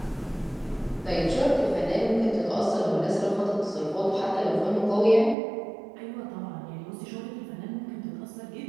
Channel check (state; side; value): drops out; left; at 5.4 s